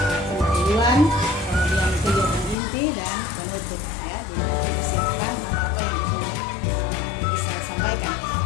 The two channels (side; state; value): right; drops out; at 2.6 s